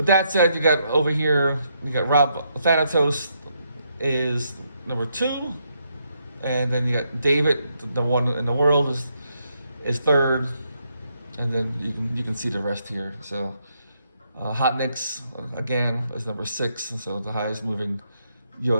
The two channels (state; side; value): inverted; both; correlation -0.77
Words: that said, you got over here, you got Rob Thanatos is number 2, and then you got David, the one in the world, is 3rd, and then you can see the rest here. So Hot Nicks again is number 6, and so the highest moving